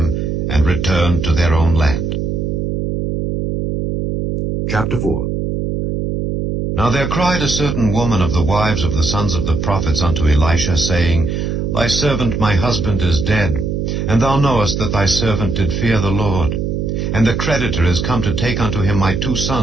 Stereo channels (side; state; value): right; noise; hum, 2 dB below the sound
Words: and returned to their own land. Chapter 4. Now there cried a certain woman of the wives of the sons of the prophets unto Elisha, saying, Thy servant my husband is dead, and thou knowest that thy servant did fear the Lord. And the creditor is come to take unto him my 2